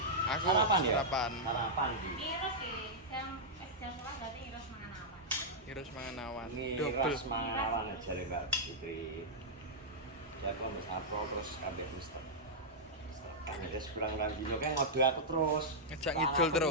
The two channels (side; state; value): both; normal; correlation -0.08